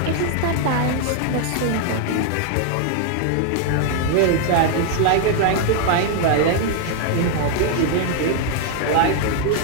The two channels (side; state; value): both; different; correlation 0.00